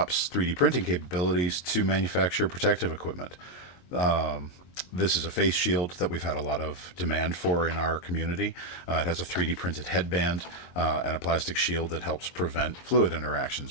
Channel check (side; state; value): right; late; 22 ms